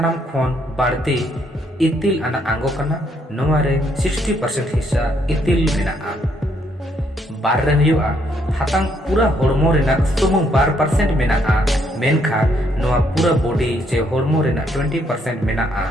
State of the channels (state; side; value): normal; both; correlation 0.71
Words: खोन बाड़ती इतिल आना आंगो कना नोवारे 60% हिस्सा इतिल मेनाआ बार रे हुआ हातांग पूरा हॉर्मो रेना सुमुंग 12% मेनाआ मेनखा नोवा पूरा बॉडी जे हॉर्मो रेना 20% मेनाआ